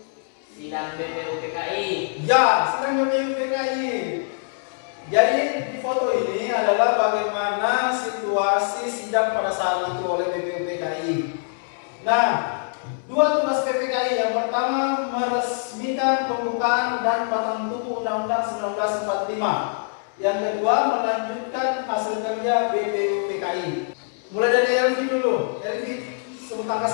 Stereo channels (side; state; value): right; silent; 63 dB below the other